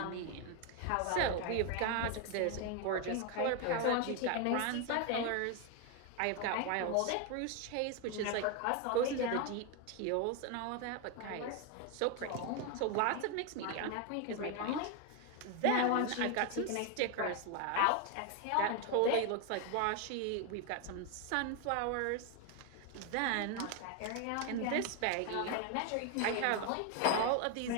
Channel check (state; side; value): different; both; correlation 0.01